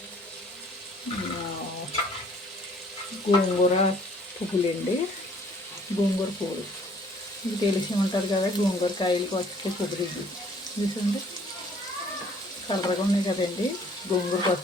గోంగూర పువ్వులండి. గోంగూర పువ్వులు మీకు తెలిసి ఉంటుంది కదా. గోంగూర కాయలకు వచ్చే పువ్వులు ఇవి చూసండి. కలర్గా ఉన్నాయి కదండి, గోంగూరకు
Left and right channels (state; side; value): normal; both; correlation 0.58